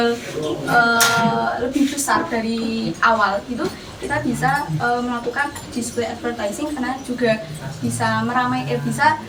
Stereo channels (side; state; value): both; identical; correlation 1.00